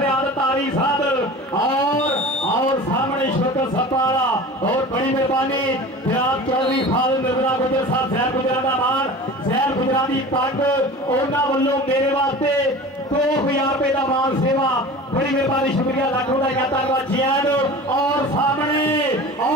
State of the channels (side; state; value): both; normal; correlation 0.37